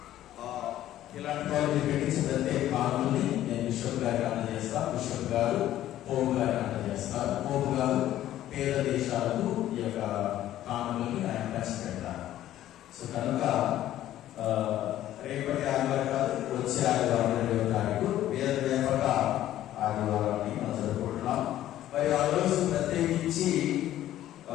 ప్రత్యేక కానుకల్ని నేను బిషప్ గారికి అందజేస్తా. బిషప్ గారు పోపు గారికి అందజేస్తారు. పోపు గారు పేద దేశాలకు ఈ యొక్క కానుకల్ని ఆయన పంచిపెడతారు. సో కనుక రేపటి ఆదివారం కాదు, వచ్చే ఆదివారం 2వ తారీఖు వేద వ్యాపక ఆదివారాన్ని మనం జరుపుకుంటున్నాం. ఆ రోజు ప్రత్యేకించి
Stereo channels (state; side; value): quieter; right; 13.1 dB